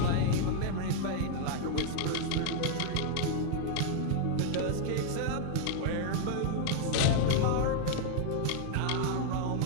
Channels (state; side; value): different; both; correlation 0.00